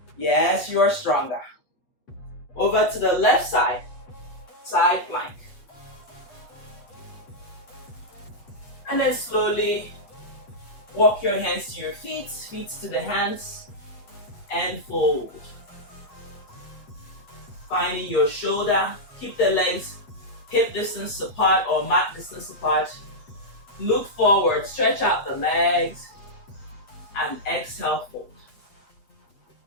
Yes, you are stronger. Over to the left side, side plank. And then slowly walk your hands to your feet, feet to the hands, and fold. Finding your shoulder, keep the legs hip distance apart or mat distance apart. Look forward, stretch out the legs, and exhale, fold.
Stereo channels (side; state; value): right; late; 8.3 ms